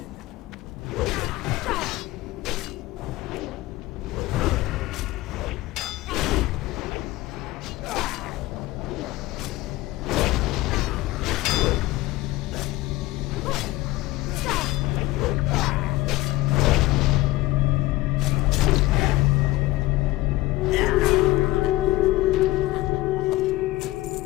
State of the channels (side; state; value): right; quieter; 18.4 dB